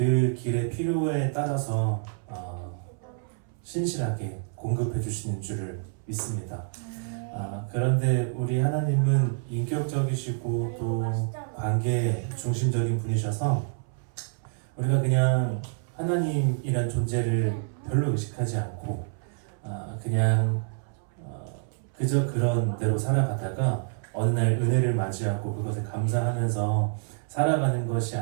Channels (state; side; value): silent; left; 60 dB below the other